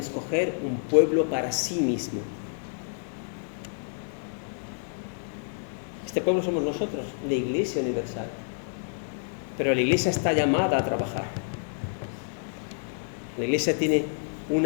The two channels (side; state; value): right; silent; digital silence